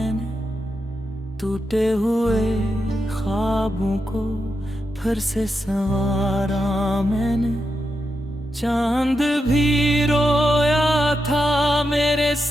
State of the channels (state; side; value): normal; both; correlation 0.87